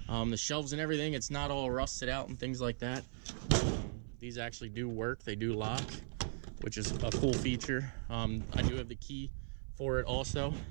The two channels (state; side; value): silent; left; 52 dB below the other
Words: The shelves and everything, it's not all rusted out and things like that. These actually do work, they do lock, which is a cool feature. I do have the key for it also.